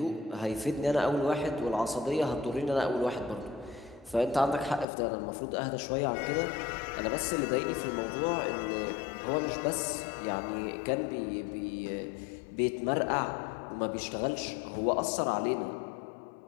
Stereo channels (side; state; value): right; drops out; at 4.9 s